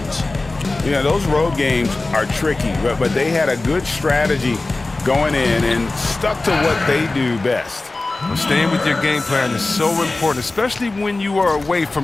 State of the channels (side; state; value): right; quieter; 3.2 dB